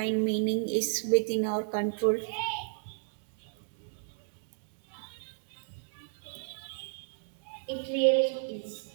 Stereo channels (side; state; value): left; silent; digital silence